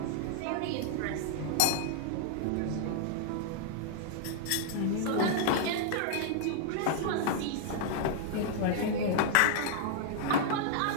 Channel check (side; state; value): both; different; correlation -0.01